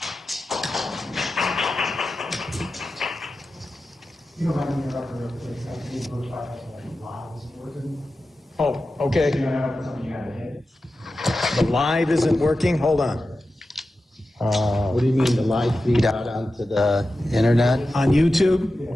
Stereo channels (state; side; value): normal; both; correlation 0.93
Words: You don't have any other place like these books by live isn't working. Oh, okay. You know, something you gotta hit. The live isn't working? Hold on. What do you mean, the live feed out onto the internet? On YouTube?